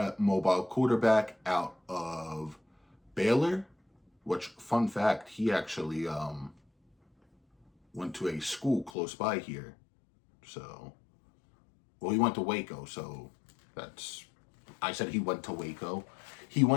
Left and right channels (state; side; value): drops out; right; at 8.9 s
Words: mobile quarterback out of Baylor, which, fun fact, he actually went to a school close by here. So, well, he went to Waco, so I said he went to Waco. He